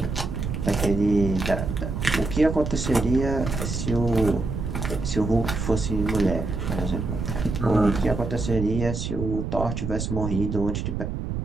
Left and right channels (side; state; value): right; noise; rumble, 3 dB below the sound